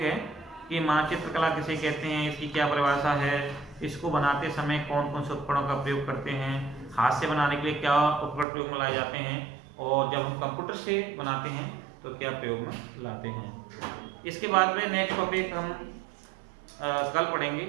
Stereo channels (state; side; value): drops out; left; at 8.5 s